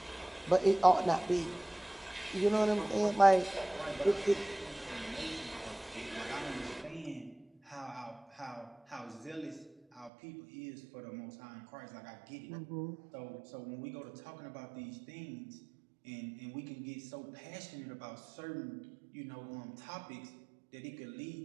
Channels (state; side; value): drops out; left; at 10.1 s